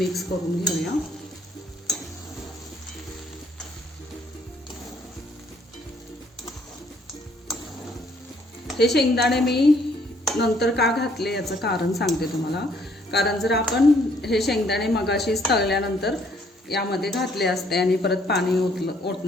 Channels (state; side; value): normal; both; correlation 0.65